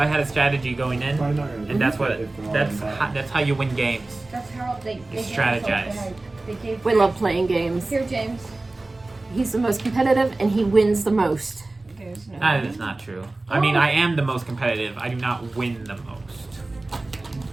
had a strategy going in, Probably not gonna and that's what if they're all in bad. that's how you win games. That's how they Strategize. They gave We love playing games. Here, James. He's the most competitive and he wins the most. who's not. That is not true. I mean, I am the most competitive. I do not win the most.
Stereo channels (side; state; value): left; quieter; 3.0 dB